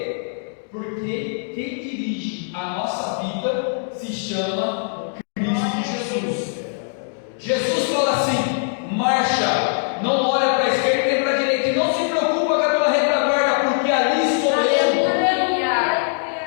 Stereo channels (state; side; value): silent; right; digital silence